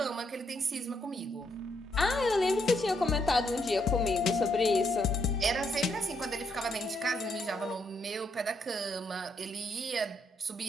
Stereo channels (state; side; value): normal; both; correlation 0.75